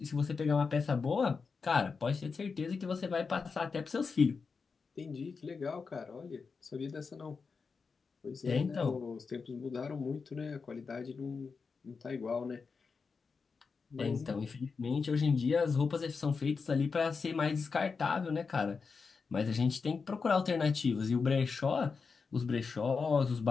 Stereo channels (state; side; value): quieter; right; 5.0 dB